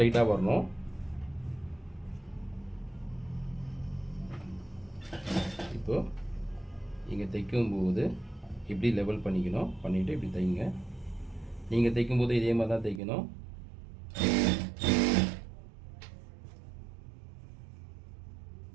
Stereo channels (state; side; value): drops out; left; at 13.0 s